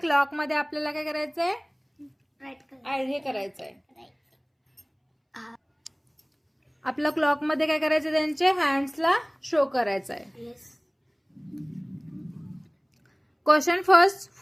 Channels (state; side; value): identical; both; correlation 1.00